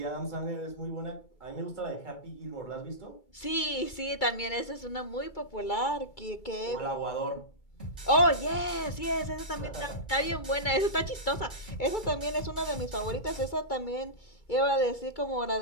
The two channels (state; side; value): late; right; 2.3 ms